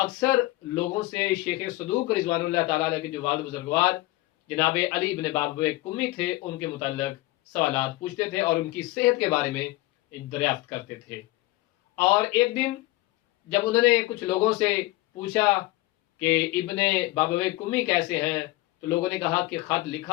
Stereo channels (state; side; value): quieter; right; 19.2 dB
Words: لوگوں سے شیخ صدوق رضوان اللہ تعالی علیہ کے جو والد بزرگوار جناب علی بن بابویہ کمی تھے ان کے متعلق سوالات پوچھتے تھے اور ان کی صحت کے بارے میں دریافت کرتے تھے. اور ایک دن جب انہوں نے کچھ لوگوں سے پوچھا کہ ابن بابویہ کمی کیسے ہیں، تو لوگوں نے کہا کہ خط